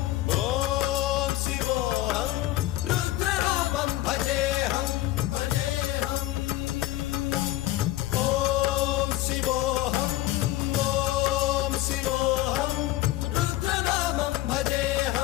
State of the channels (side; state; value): right; quieter; 16.2 dB